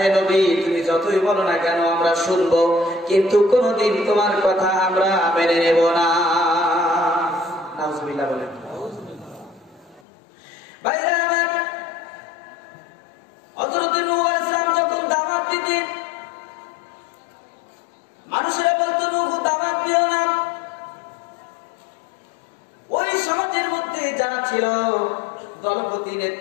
নবী, তুমি যতই বলো না কেন আমরা শুনবো, কিন্তু কোনদিন তোমার কথা আমরা মেনে নেব না। নাউজুবিল্লাহ বলেন। ভাইরা আমার, হযরত নূহ আলাইহিস সালাম যখন দাওয়াত দিতেন, মানুষেরা বলতো, নূহ দাওয়াত দিও না। ওই সমাজের মধ্যে যারা ছিল, দলপতি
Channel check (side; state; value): right; drops out; at 10.0 s